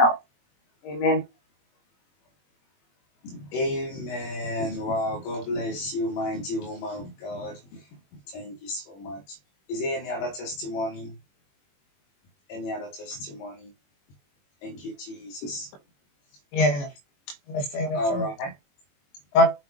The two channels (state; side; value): late; right; 21 ms